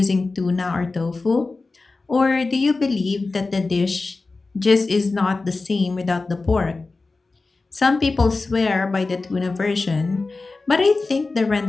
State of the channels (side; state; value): right; quieter; 3.7 dB